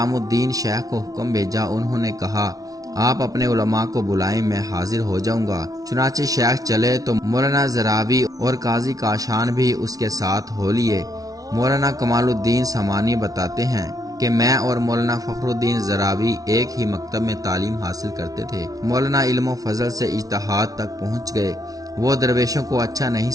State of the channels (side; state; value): left; late; 0.18 ms